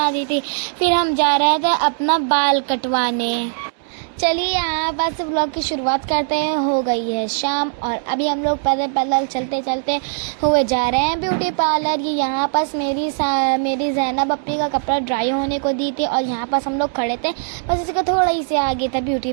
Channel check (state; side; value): silent; left; digital silence